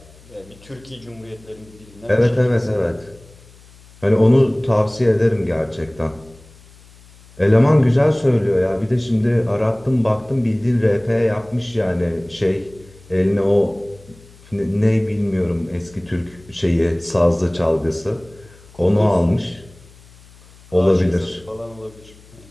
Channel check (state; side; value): noise; left; hum, 25 dB below the sound